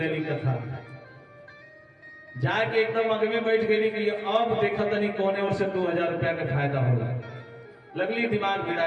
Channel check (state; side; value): identical; both; correlation 1.00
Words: देली कथा। जाके एकदम अग में बैठ गई कि अब देखा तनी कोने ओर से 2000 रुपया का फायदा होला। लगली दिमाग